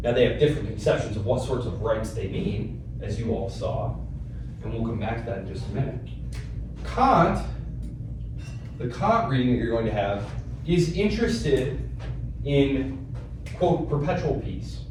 Now they have different conceptions of what sorts of rights they mean, as you all saw, and we'll come back to that in just a minute. Kant, the Kant reading that you're going to have, is interested in, quote, perpetual peace.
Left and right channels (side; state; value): both; identical; correlation 1.00